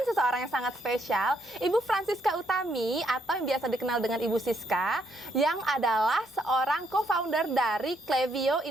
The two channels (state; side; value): normal; both; correlation 0.73